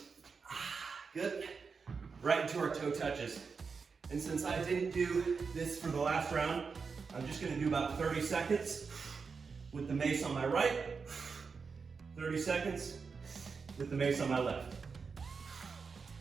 Good. Right into our toe touches. And since I didn't do this for the last round, I'm just gonna do about 30 seconds with the mace on my right, 30 seconds with the mace on my left.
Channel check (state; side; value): quieter; left; 5.2 dB